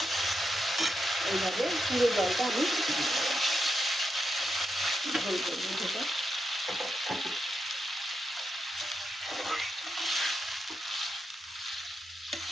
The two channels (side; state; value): both; normal; correlation 0.85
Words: এইভাবে পুরো জলটা আমি ঝোল করবো। যেটা